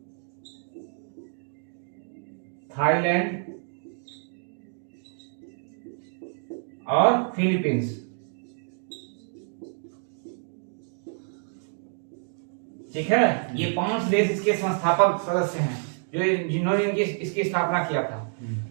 Thailand और फिलीपींस। ठीक है, ये 5 देश इसके संस्थापक सदस्य हैं जो जिन्होंने इसकी स्थापना किया था।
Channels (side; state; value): left; silent; 59 dB below the other